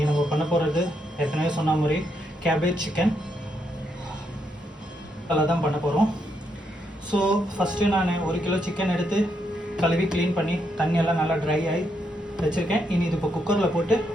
நம்ம பண்ண போகிறது ஏற்கனவே சொன்ன மாதிரி கேபேஜ் சிக்கன் அதெல்லாம் தான் பண்ண போகிறோம். ஸோ ஃபஸ்ட்டு நான் 1 கிலோ சிக்கன் எடுத்து கழுவி க்ளீன் பண்ணி தண்ணியெல்லாம் நல்லா ட்ரை ஆகி வச்சுருக்கேன். இனி இது இப்போ குக்கரில் போட்டு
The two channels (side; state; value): both; normal; correlation 0.79